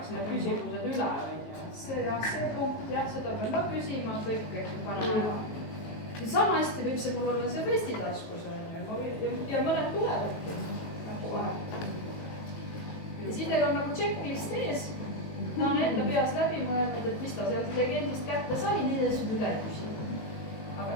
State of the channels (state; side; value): late; right; 19 ms